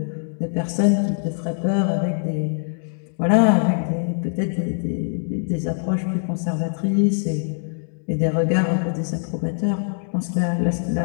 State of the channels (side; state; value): right; silent; 64 dB below the other